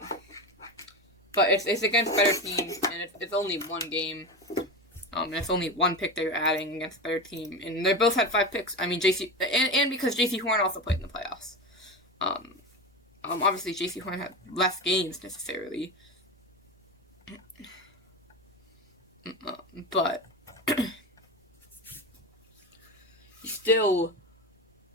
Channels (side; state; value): both; normal; correlation 0.22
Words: it's against better teams, and it's only 1 game. And it's only 1 pick that you're adding against a better team. And they both had 5 picks. And because J.C. Horn also played in the playoffs. Obviously, J.C. Horn had less games necessarily. But he still